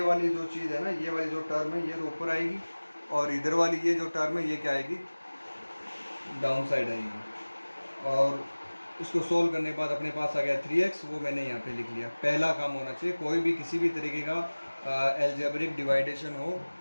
वाली जो चीज़ है ना, ये वाली जो टर्म है ये तो ऊपर आएगी, और इधर वाली ये जो टर्म है ये क्या आएगी, डाउन साइड आएगी। और इसको सोल्व करने के बाद अपने पास आ गया 3x, वो मैंने यहाँ पे लिख लिया। पहला काम होना चाहिए, कोई भी किसी भी तरीके का एल्जेब्रिक डिवाइडेशन हो,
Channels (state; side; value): inverted; both; correlation -1.00